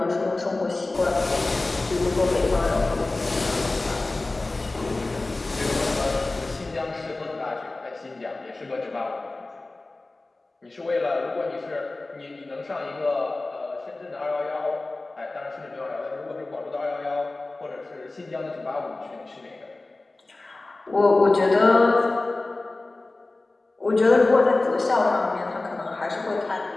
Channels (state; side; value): quieter; right; 3.1 dB